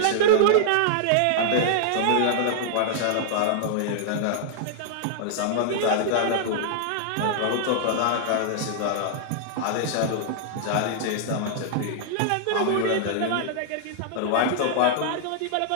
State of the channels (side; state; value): both; different; correlation -0.01